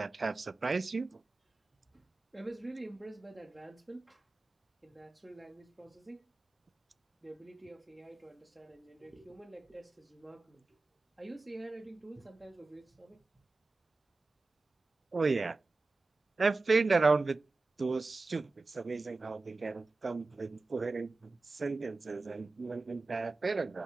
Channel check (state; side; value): quieter; left; 3.5 dB